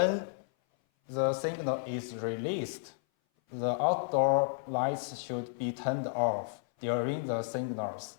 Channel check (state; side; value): silent; right; 56 dB below the other